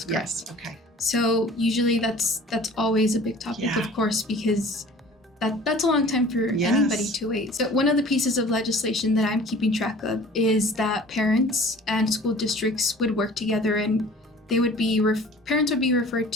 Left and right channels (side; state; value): both; normal; correlation 0.47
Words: correct. Yes. Okay. So usually that's always a big topic, Yeah. of course, because that's a long time for Yes. anybody to wait. So one of the pieces of legislation that I'm keeping track of is that parents and school districts would work together, and they would be parents would be referred